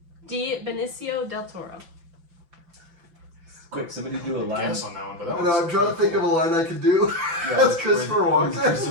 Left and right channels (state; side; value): late; left; 5.9 ms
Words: D. Benicio del Toro. Quick, somebody do a line. Guess on that one, but that I know, I'm one's trying to think of a line I could do. That's Christopher with Walken.